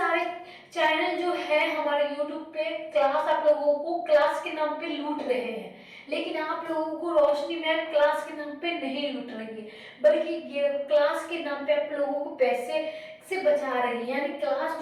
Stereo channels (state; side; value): identical; both; correlation 1.00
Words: चैनल जो है हमारे यूट्यूब पे क्लास आप लोगों को क्लास के नाम पे लूट रहे हैं, लेकिन आप लोगों को रोशनी मैम क्लास के नाम पे नहीं लूट रही है, बल्कि क्लास के नाम पे आप लोगों को पैसे से बचा रही है, यानी क्लास